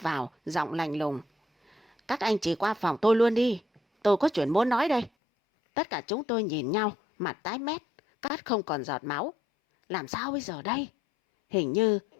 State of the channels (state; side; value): drops out; right; at 5.1 s